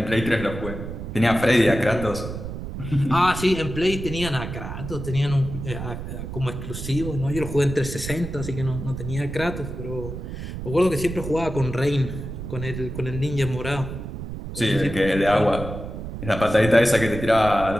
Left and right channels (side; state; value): right; noise; rumble, 8 dB below the sound